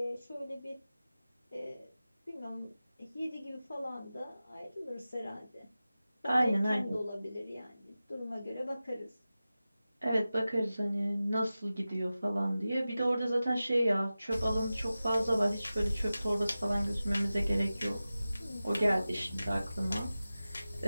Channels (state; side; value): inverted; both; correlation -0.95